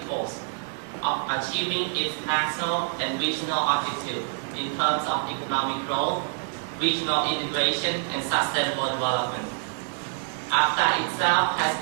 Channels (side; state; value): left; silent; 61 dB below the other